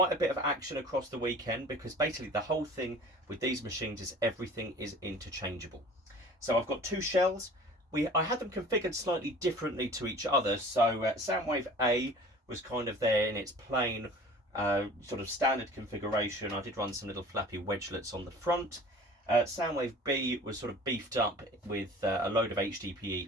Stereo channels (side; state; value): both; normal; correlation 0.44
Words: a bit of action across the weekend, because basically the whole thing with these machines is everything is interchangeable. So I've got two shells. I had them configured slightly differently to each other. So Soundwave A was kind of there in its plain sort of standard configuration. I did run some little flappy wedgelets on the front. Soundwave B was sort of beefed up with a load of HDPE